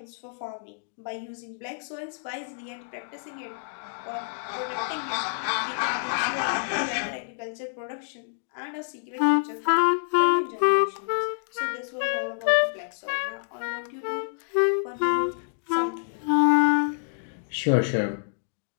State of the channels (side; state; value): right; silent; digital silence